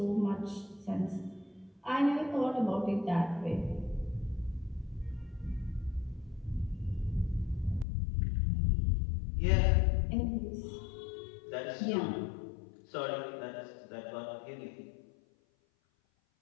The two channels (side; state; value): right; drops out; at 7.9 s